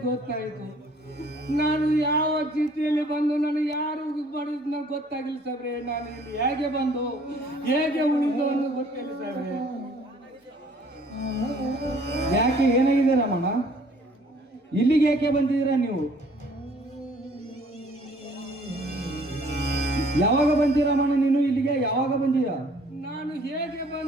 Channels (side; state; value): both; normal; correlation 0.57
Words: ಗೊತ್ತಾಯ್ತು. ನಾನು ಯಾವ ಸ್ಥಿತಿಯಲ್ಲಿ ಬಂದು ನನಗೆ ಯಾರು ಮಾಡಿದ್ ನನಗೆ ಗೊತ್ತಾಗಿಲ್ಲ ಸಾಹೇಬ್ರೆ. ನಾನು ಇಲ್ಲಿ ಹೇಗೆ ಬಂದು ಹೇಗೆ ಉಳಿದು ಅನ್ನೋದು ಗೊತ್ತಿಲ್ಲ ಸಾಹೇಬ್ರೆ. ಯಾಕೆ ಏನಾಗಿದೆ ರಾಮಣ್ಣ? ಇಲ್ಲಿಗೆ ಯಾಕೆ ಬಂದಿದ್ದೀರಾ ನೀವು? ಯಾವಾಗ ಬಂದಿ ರಾಮಣ್ಣ ನೀನು ಇಲ್ಲಿಗೆ? ಯಾವಾಗ ಬಂದೀಯ? ನಾನು ಹೇಗೆ